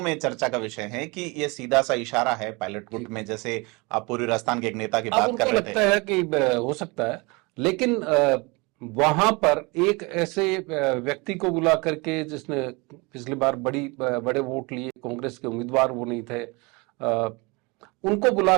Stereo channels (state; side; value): quieter; left; 27.0 dB